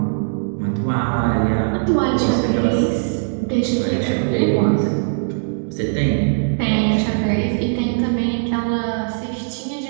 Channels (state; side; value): silent; left; 66 dB below the other